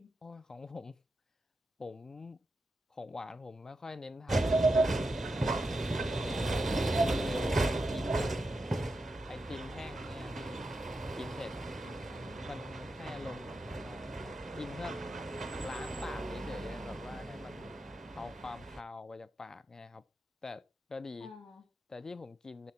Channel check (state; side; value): normal; both; correlation 0.88